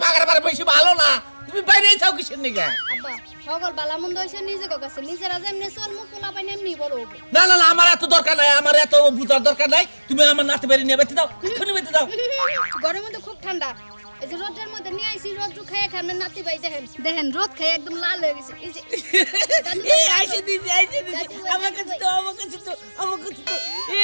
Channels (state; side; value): inverted; both; correlation -1.00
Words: পাগার বাড়ি বেশি ভালো না তুমি বাইরে যাও কিসের নিগে আব্বা সকল বালামন্দ হইছে নিজে কাছে নিজেরা যেমনে চলমু পোলা পাই এমনি বড় হবে না না না আমার এত দরকার নাই আমার এত বুঝার দরকার নাই তুমি আমার নাতি বাইরে নিয়ে বাইতে দাও এখনি বাইতে দাও গরমের মধ্যে খুব ঠান্ডা এই যে রোদের মধ্যে নিয়ে আইছি রোদ খাইয়া খান নাতি ভাই দেখেন রোদ খাইয়া একদম লাল হয়ে গেছে এই যে এই আইছে দিদি আমার কাছে তো